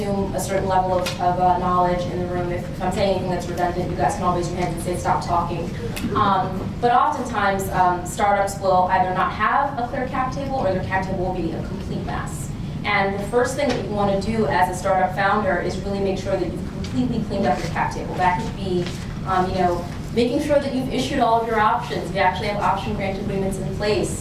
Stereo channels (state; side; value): identical; both; correlation 1.00